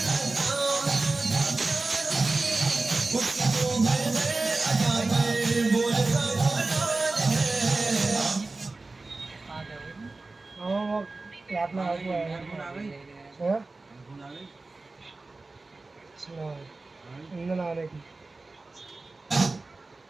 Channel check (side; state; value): left; quieter; 3.4 dB